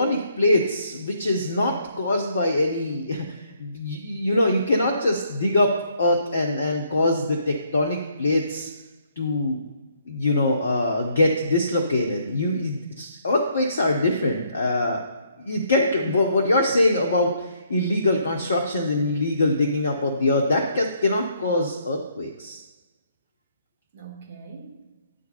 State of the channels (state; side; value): inverted; both; correlation -0.69